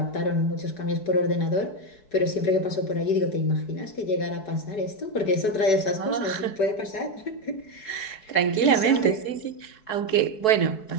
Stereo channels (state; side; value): late; right; 4.7 ms